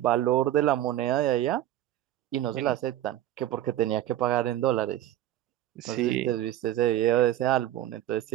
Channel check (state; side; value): quieter; left; 13.1 dB